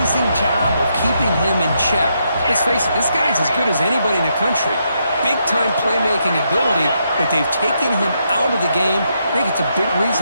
job of keeping him in check. Let's face it, this guy's as good as anybody in the country. Big-time playmaking ability, but they've taken him out of the game. I think it's a big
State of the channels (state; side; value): inverted; both; correlation -0.79